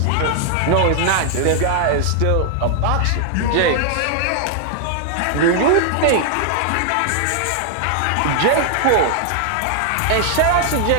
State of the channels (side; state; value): both; different; correlation 0.00